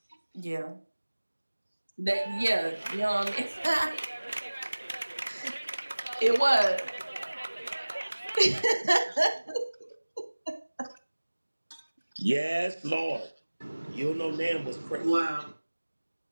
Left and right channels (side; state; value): both; inverted; correlation -1.00